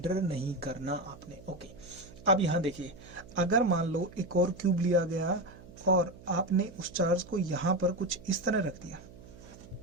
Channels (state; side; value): noise; right; hum, 19 dB below the sound